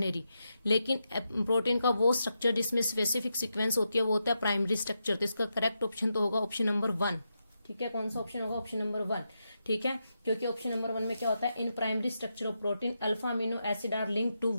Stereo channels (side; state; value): both; inverted; correlation -0.86